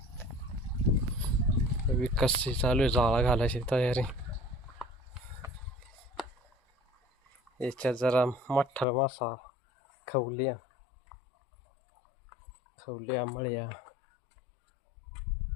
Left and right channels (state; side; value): drops out; right; at 8.8 s